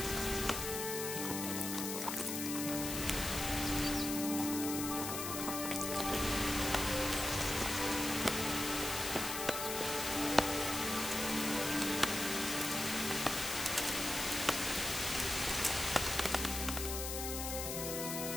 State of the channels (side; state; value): left; noise; hiss, 3 dB below the sound